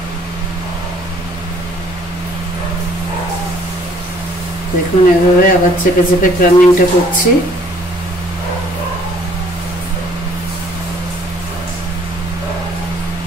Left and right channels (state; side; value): normal; both; correlation 0.59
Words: দেখুন এভাবে আবার চেপে চেপে ক্রাম্বিংটা করছি।